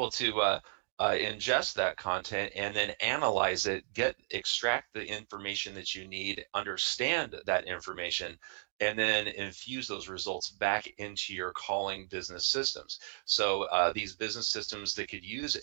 to ingest that content and then analyze it, extract the information that you need, understand that information, and then infuse those results back into your calling business systems. So these business systems that could use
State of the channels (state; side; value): silent; left; digital silence